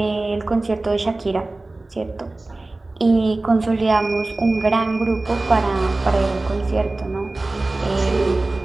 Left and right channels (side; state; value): left; quieter; 3.0 dB